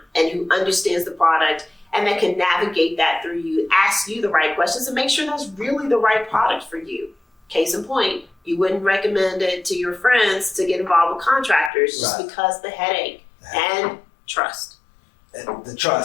and who understands the product and that can navigate that through you, ask you the right questions, and make sure that's really the right product for you. Case in point, you wouldn't recommend it to your friends to get involved with contractors just because the headache and trust. The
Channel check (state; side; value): drops out; right; at 11.7 s